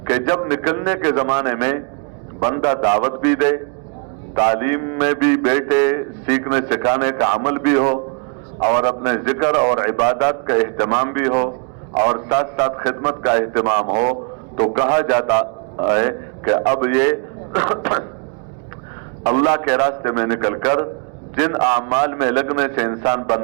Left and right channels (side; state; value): left; quieter; 38.3 dB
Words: कि जब निकलने के जमाने में बंदा दावत भी दे, तालीम में भी बैठे, सीखने सिखाने का अमल भी हो, और अपने जिक्र और इबादत का एहतमाम भी हो, और साथ साथ खिदमत का एहतमाम हो, तो कहा जाता है कि अब ये अल्लाह के रास्ते में निकलकर जिन आमाल में लगने से इंसान